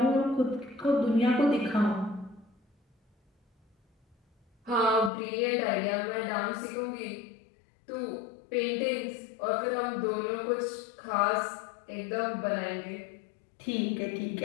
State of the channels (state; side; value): drops out; right; at 5.1 s